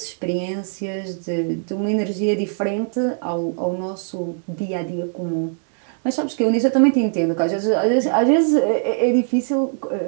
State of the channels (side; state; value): left; silent; 65 dB below the other